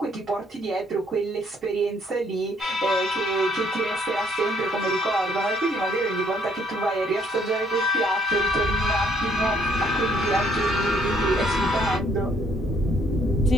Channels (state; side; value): normal; both; correlation 0.66